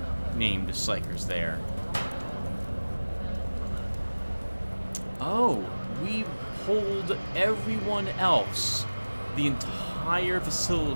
named psychers there. Oh, we pulled everyone else. The entire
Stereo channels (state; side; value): inverted; both; correlation -1.00